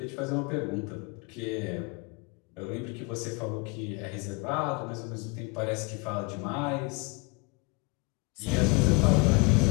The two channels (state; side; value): quieter; right; 27.1 dB